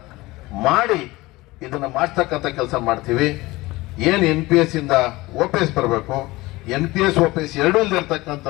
ಮಾಡಿ ಇದನ್ನ ಮಾಡಿಸ್ತಕ್ಕಂಥ ಕೆಲಸ ಮಾಡ್ತೀವಿ. ಏನ್ NPS ಇಂದ OPS ಬರಬೇಕು, NPS OPS ಎರಡೂ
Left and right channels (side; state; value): right; quieter; 20.4 dB